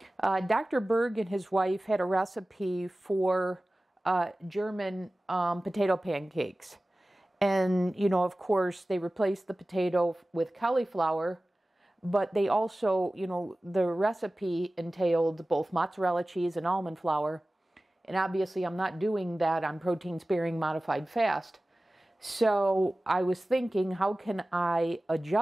Dr. Berg and his wife had a recipe for German potato pancakes. And, you know, of course, they replaced the potato with cauliflower, but they also, you know, the recipe entailed both mozzarella cheese and almond flour. And obviously, I'm not doing that on protein-sparing modified fast. So I was thinking, how can I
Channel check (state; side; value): normal; both; correlation 0.97